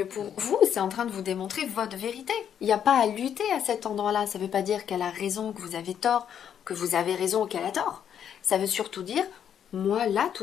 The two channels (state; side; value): quieter; right; 8.9 dB